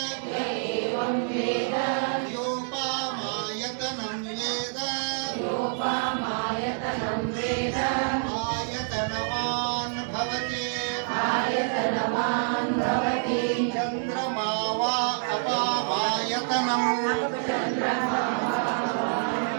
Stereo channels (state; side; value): silent; left; digital silence